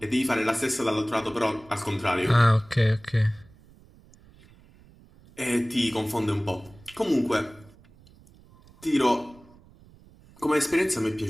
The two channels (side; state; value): right; noise; rumble, 26 dB below the sound